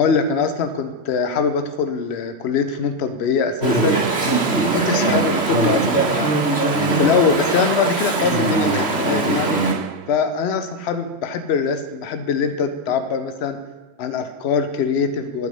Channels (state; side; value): late; right; 3.1 ms